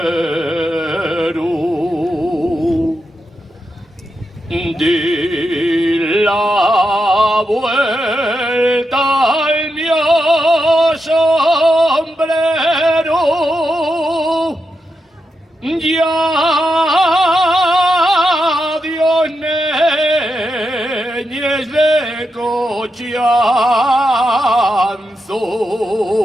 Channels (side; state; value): both; normal; correlation 0.86